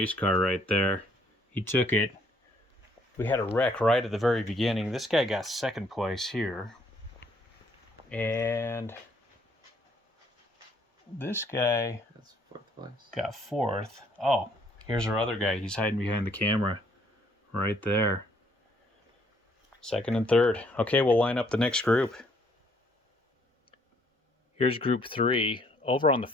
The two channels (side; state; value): both; normal; correlation 0.66